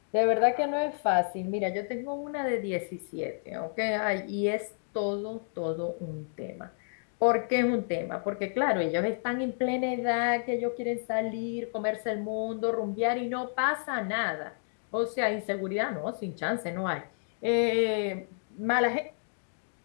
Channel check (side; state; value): right; silent; digital silence